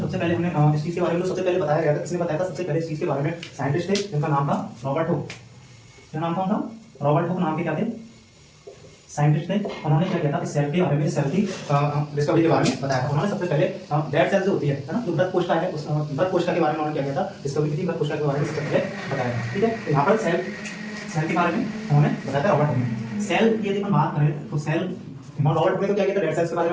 सबसे पहले हमने इस चीज के बारे में तो सबसे पहले बताया गया था। किसने बताया था सबसे पहले इस चीज के बारे में? साइंटिस्ट थे जिनका नाम था रॉबर्ट हुक। क्या नाम था उनका? रॉबर्ट हुक नाम के क्या थे, साइंटिस्ट थे। उन्होंने क्या किया था, इस सेल के बारे में, सेल की डिस्कवरी के बारे में बताया था। उन्होंने सबसे पहले डेड सेल जो होती है ना, जो मृत कोशिका है, उस मृत कोशिका के बारे में उन्होंने क्या किया था, डिस्कवरी की थी। मृत कोशिका के बारे में सबसे पहले बताया था। ठीक है, तो यहाँ पर सेल के बारे में उन्होंने बताया था रॉबर्ट हुक ने। सेल की यदि हम बात करें तो सेल, रॉबर्ट हुक ने तो क्या किया था, डेड सेल्स के बारे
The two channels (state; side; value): identical; both; correlation 1.00